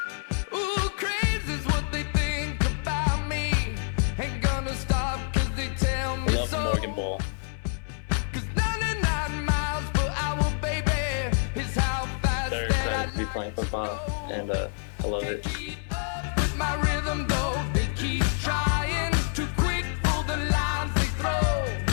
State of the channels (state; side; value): silent; right; 60 dB below the other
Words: Morgan Bowl. They're excited to be playing football, and I love it. It's a